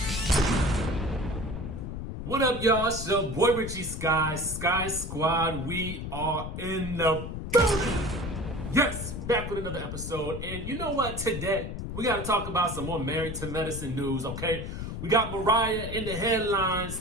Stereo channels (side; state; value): left; noise; rumble, 6 dB below the sound